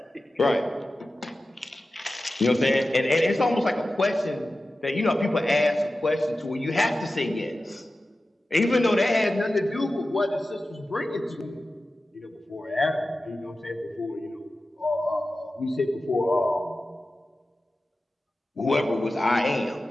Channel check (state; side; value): normal; both; correlation 0.94